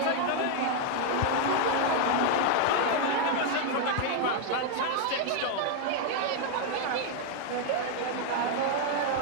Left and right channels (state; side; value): different; both; correlation 0.00